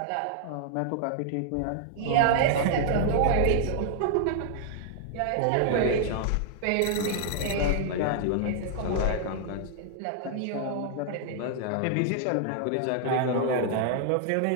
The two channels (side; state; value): both; different; correlation -0.01